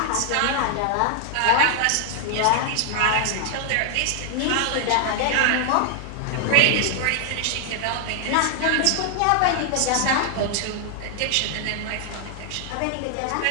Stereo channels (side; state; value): both; different; correlation 0.00